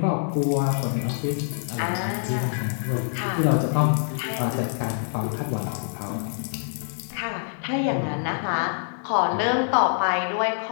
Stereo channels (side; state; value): right; silent; digital silence